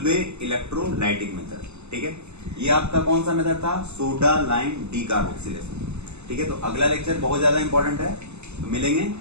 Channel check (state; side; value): late; left; 0.81 ms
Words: इलेक्ट्रोलाइटिक मेथड, ठीक है? ये आपका कौन सा मेथड था? सोडा लाइम डीकार्बोक्सिलेशन, ठीक है? तो अगला लेक्चर बहुत ज्यादा इंपॉर्टेंट है, तो मिलेंगे